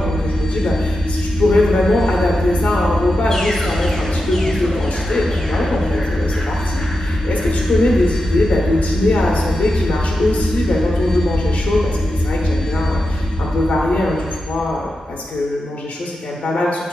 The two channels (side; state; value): both; normal; correlation 0.89